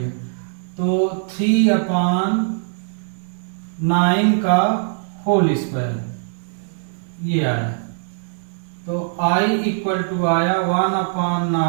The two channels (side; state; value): left; silent; digital silence